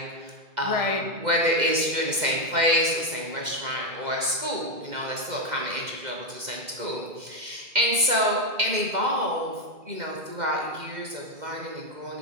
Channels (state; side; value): late; left; 2.1 ms